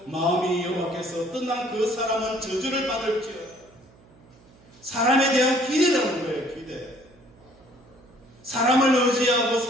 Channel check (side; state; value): right; noise; hum, 27 dB below the sound